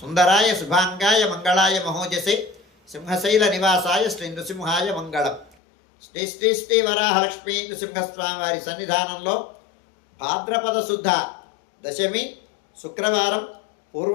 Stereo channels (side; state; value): right; drops out; at 5.6 s